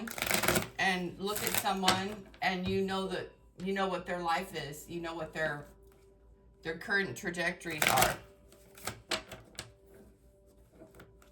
and look at someone and you know what their life is. You know what their current trajectories are.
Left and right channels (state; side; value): identical; both; correlation 1.00